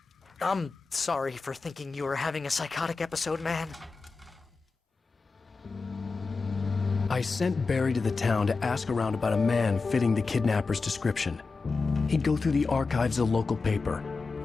sorry for thinking you were having a psychotic episode, man. I sent Barry to the town to ask around about a man fitting the kidnapper's description. He'd go through the archives of the local paper.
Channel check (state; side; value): quieter; right; 4.3 dB